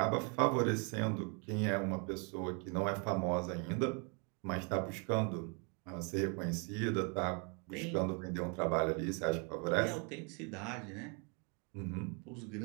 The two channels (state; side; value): quieter; left; 35.7 dB